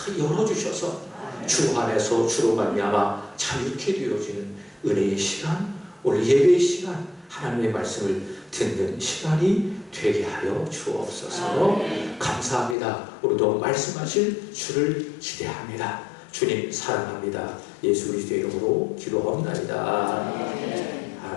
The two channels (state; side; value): drops out; right; at 12.8 s